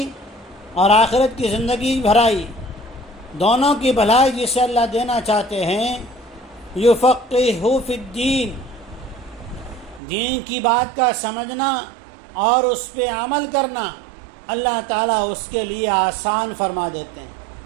اور آخرت کی زندگی بھلائی، دونوں کی بھلائی جسے اللہ دینا چاہتے ہیں، یفقہہ فی الدین، دین کی بات کا سمجھنا اور اس پہ عمل کرنا اللہ تعالیٰ اس کے لیے آسان فرما دیتے ہیں.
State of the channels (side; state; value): left; drops out; at 10.0 s